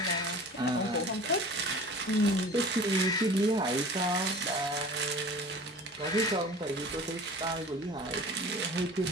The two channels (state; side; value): normal; both; correlation 0.41